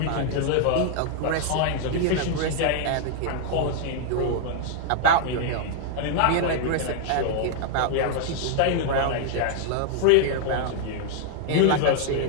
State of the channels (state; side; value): different; both; correlation 0.00